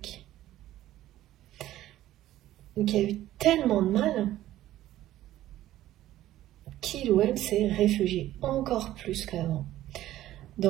Qui a eu tellement de mal qu'il ou elle s'est réfugié encore plus qu'avant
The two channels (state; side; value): quieter; left; 14.1 dB